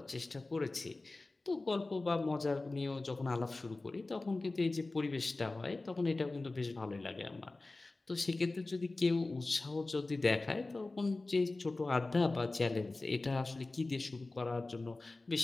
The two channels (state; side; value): quieter; right; 3.2 dB